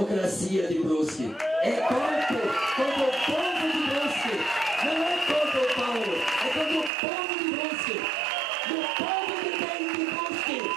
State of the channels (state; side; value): drops out; left; at 6.9 s